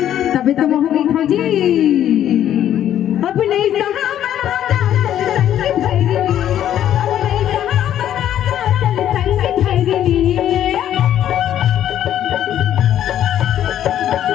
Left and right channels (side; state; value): right; quieter; 11.1 dB